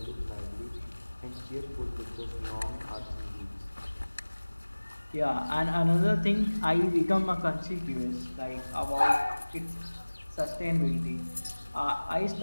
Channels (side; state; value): both; inverted; correlation -1.00